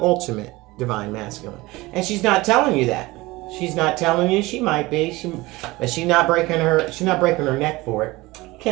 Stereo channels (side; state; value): left; quieter; 20.8 dB